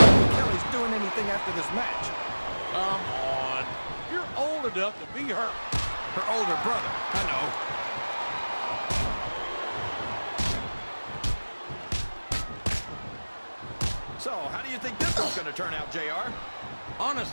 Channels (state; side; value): inverted; both; correlation -1.00